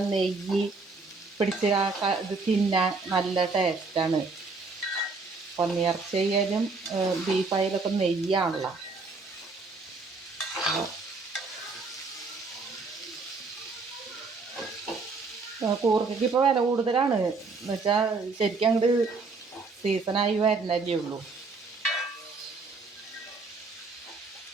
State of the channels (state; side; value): quieter; left; 4.1 dB